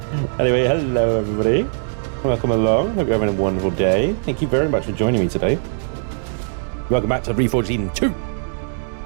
Anyway, hello everybody. Welcome along. Hope you're having a wonderful day. Thank you very much for joining me today. Welcome back to Reforged Eden 2.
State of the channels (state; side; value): silent; left; digital silence